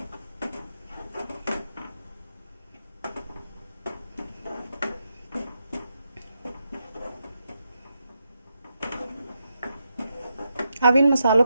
अब इन मसालों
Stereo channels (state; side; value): inverted; both; correlation -0.84